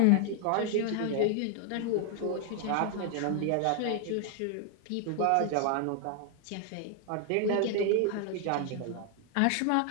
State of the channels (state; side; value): different; both; correlation 0.00